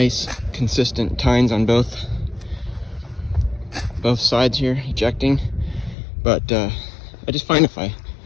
consistent tines on both sides here, ejecting. But I just find if I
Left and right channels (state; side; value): drops out; right; at 6.0 s